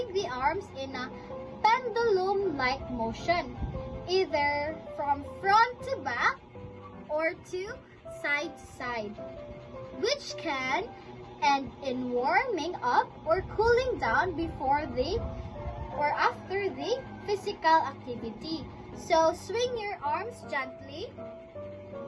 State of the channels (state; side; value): identical; both; correlation 1.00